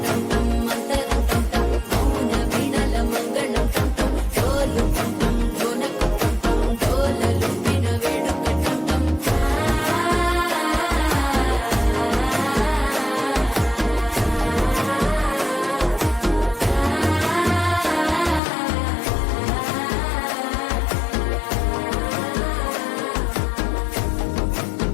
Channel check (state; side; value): drops out; right; at 18.4 s